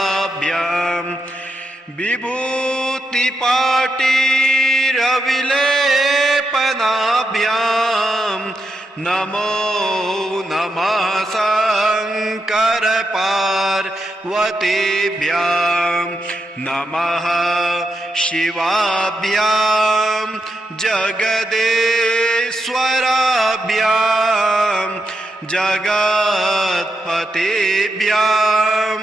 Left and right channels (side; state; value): both; normal; correlation 0.84